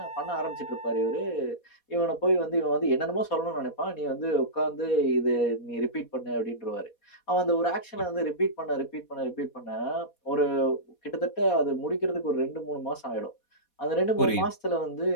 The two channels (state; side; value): late; right; 4.2 ms